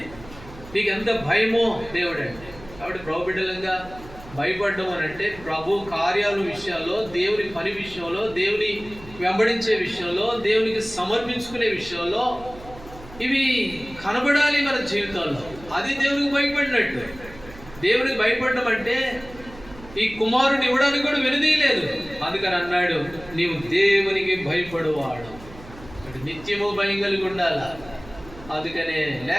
నీకు ఎంత భయమో దేవుడు అంటే. కాబట్టి ప్రభు బిడ్డలంగా భయపడడం అని అంటే ప్రభు కార్యాల విషయాల్లో, దేవుని పని విషయంలో, దేవుని వెంబడించే విషయంలో, దేవునికి సమర్పించుకునే విషయంలో ఇవి కనబడాలి మన జీవితాల్లో. అది దేవునికి భయపడినట్టు. దేవునికి భయపడడం అంటే ఈ కుమారుని ఇవ్వడానికి కూడా వెనుదీయలేదు. అందుకని అన్నాడు, నీవు దేవునికి భయపడువాడు. నిత్యము భయం కలిగి ఉండాలా. అందుకనే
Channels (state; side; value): noise; right; hum, 18 dB below the sound